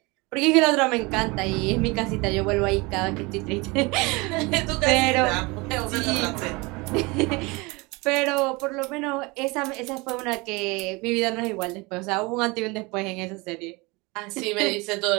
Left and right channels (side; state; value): left; quieter; 25.5 dB